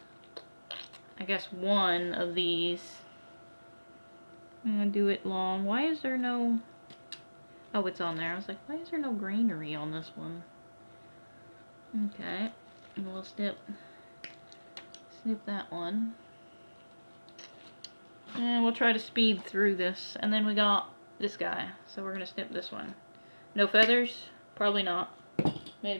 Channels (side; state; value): both; inverted; correlation -1.00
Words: I guess 1 of these. I'm going to do it long. Why is there no... Oh, it's on there. I was like, why is there no greenery on this one? Okay. And we'll snip that one. And we'll try to speed through this. And then we got this guy. So we're going to snip this one. No feathers? Probably not.